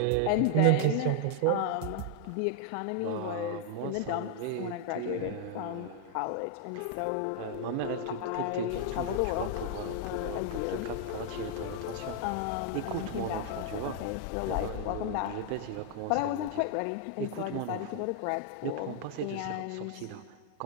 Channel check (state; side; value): different; both; correlation 0.00